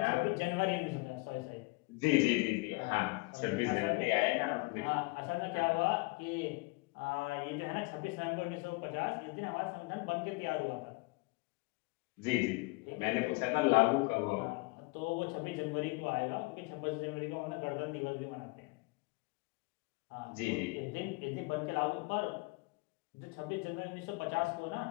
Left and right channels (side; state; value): right; quieter; 25.8 dB